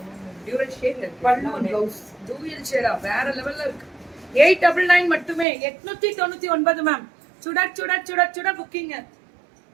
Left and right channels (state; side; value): drops out; left; at 5.5 s